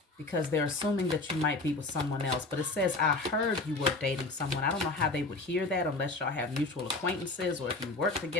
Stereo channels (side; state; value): right; quieter; 3.3 dB